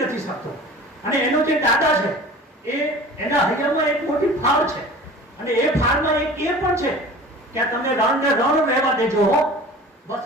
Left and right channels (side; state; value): both; normal; correlation 0.41